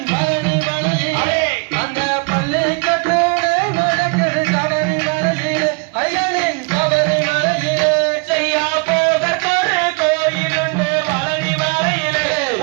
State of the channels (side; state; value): left; quieter; 32.3 dB